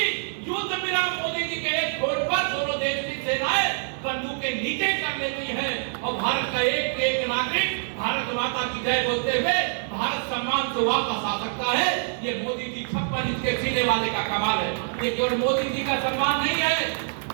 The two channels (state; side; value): silent; left; digital silence